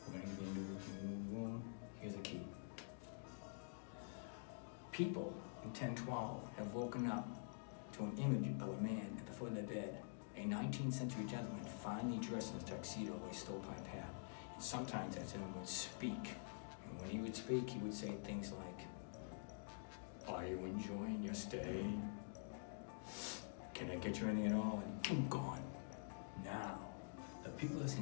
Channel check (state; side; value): silent; right; digital silence